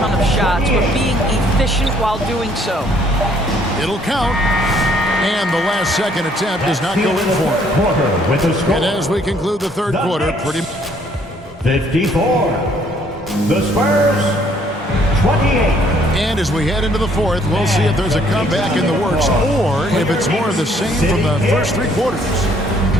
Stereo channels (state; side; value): normal; both; correlation 0.64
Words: of shots, but being efficient while doing so. It'll count. And the last second attempt does not go in for it. And as we conclude the third quarter, pretty 54. The Spurs, 28. And as we head into the fourth, we'll see if there's a comeback in the works or if it's more of the same from the first 3 quarters.